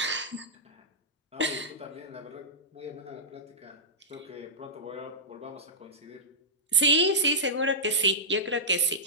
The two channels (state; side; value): normal; both; correlation -0.15